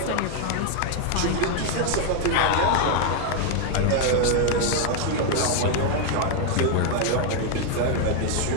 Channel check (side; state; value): both; different; correlation 0.01